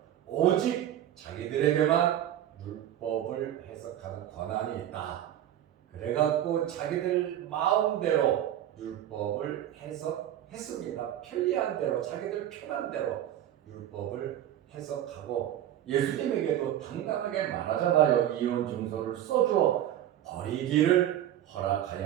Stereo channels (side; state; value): left; quieter; 11.7 dB